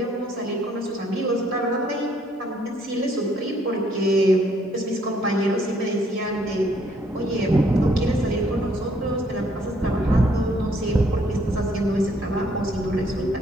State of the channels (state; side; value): normal; both; correlation 0.66